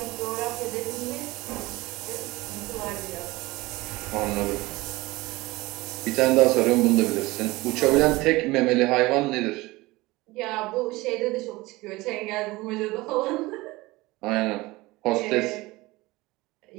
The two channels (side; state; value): left; quieter; 20.8 dB